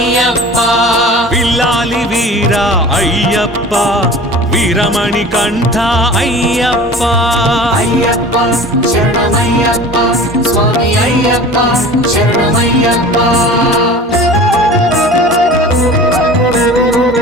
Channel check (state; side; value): normal; both; correlation 0.40